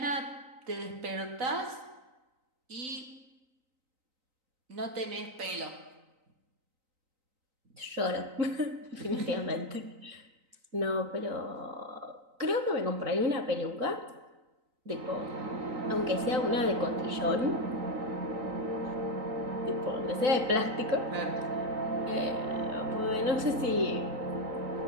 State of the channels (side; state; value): left; late; 3.9 ms